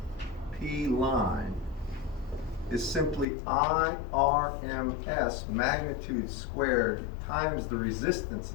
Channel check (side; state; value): right; drops out; at 3.2 s